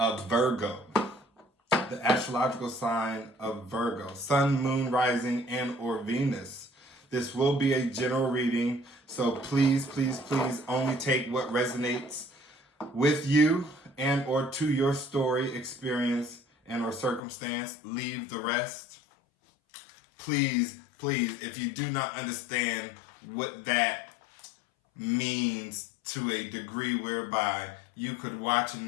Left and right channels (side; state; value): right; drops out; at 17.2 s